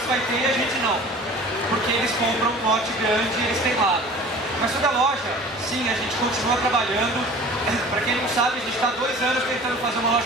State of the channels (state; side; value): normal; both; correlation 0.43